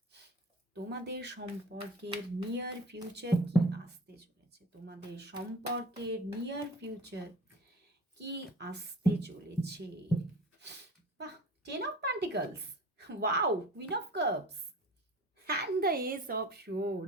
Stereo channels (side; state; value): both; normal; correlation 0.39